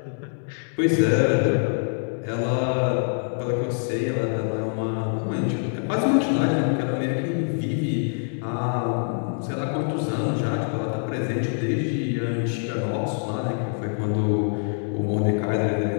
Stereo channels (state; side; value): silent; right; 58 dB below the other